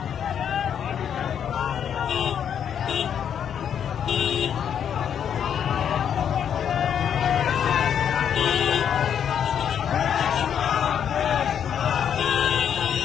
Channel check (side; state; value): right; quieter; 8.6 dB